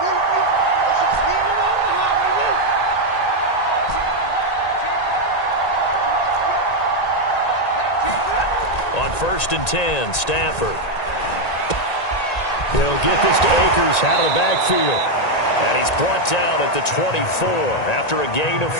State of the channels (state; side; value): late; right; 1.9 ms